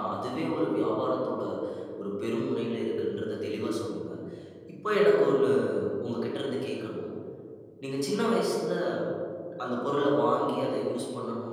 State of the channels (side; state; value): both; identical; correlation 1.00